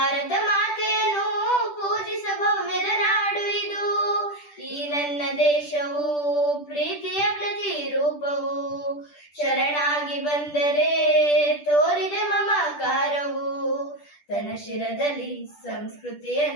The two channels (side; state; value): right; late; 10 ms